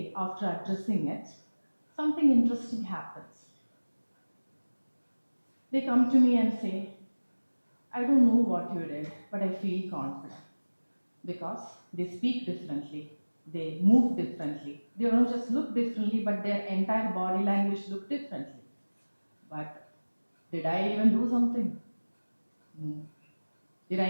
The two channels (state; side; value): inverted; both; correlation -1.00